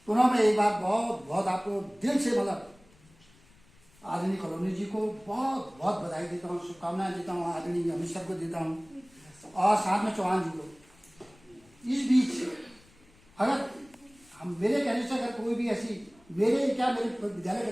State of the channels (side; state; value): left; noise; rumble, 29 dB below the sound